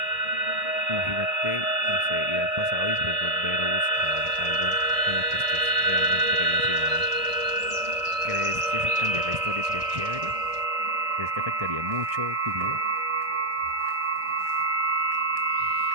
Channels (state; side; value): late; left; 1.6 ms